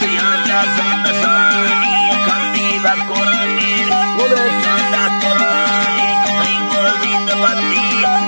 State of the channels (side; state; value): both; inverted; correlation -1.00